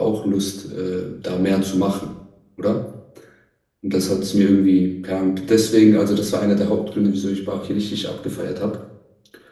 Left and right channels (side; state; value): both; identical; correlation 1.00